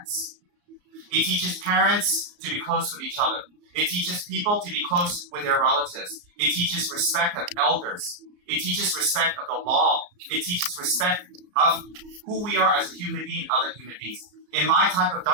It teaches parents to be close with each other. It teaches people to be close with their relatives. It teaches respect of elders. It teaches respect of the law. It teaches respect of who we are as a human being, other human beings. In my type of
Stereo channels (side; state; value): left; late; 34 ms